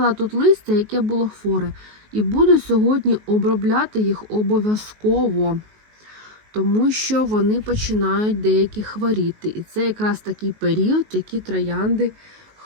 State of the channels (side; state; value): left; late; 19 ms